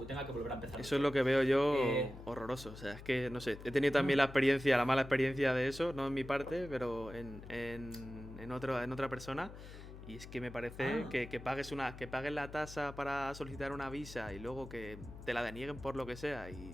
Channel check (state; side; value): noise; left; hum, 14 dB below the sound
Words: tenga que volver a empezar. Eso es lo que veo yo horroroso. O sea, es que, no sé, he tenido también la mala experiencia de eso, no en mi parte, pero en otra persona. Y es que me parece que pagues la tasa para solicitar una visa y luego que te la denieguen por lo que sea